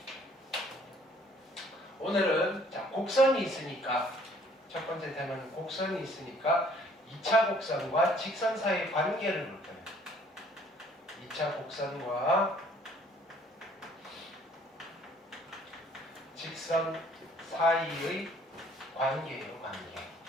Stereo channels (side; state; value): both; normal; correlation 0.59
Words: 오늘은 자, 곡선이 있으니까 첫 번째 테마는 곡선이 있으니까 2차 곡선과 직선 사이의 관계를 볼 거예요. 2차 곡선과 직선 사이의 관계예요, 관계.